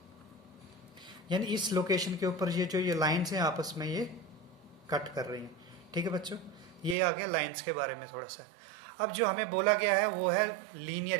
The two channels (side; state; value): left; drops out; at 7.0 s